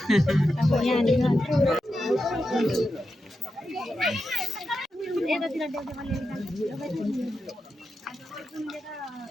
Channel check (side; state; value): both; normal; correlation 0.89